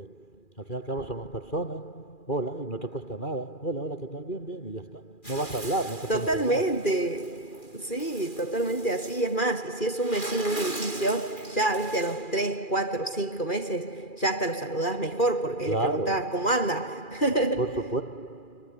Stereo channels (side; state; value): right; late; 2.4 ms